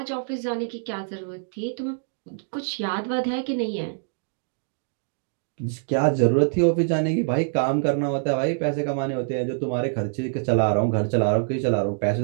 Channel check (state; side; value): silent; left; digital silence